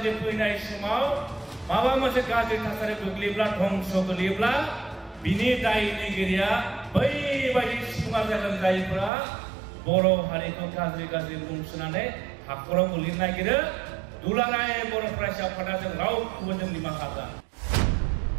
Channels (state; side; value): drops out; left; at 9.1 s